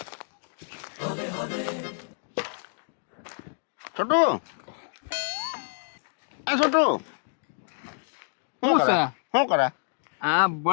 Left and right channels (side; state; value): right; silent; digital silence